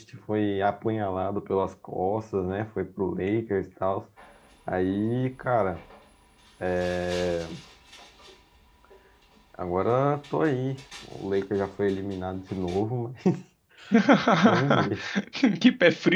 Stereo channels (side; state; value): both; identical; correlation 1.00